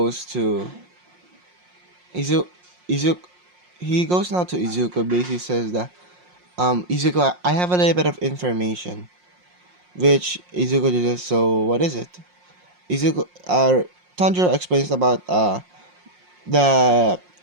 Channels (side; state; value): left; late; 5.6 ms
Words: to Izu Izuku. He goes now to Izuku. Basically says that Izuku, I have a little bit of information. Which Izuku just, so what is it? Izuku Tanjiro explains about the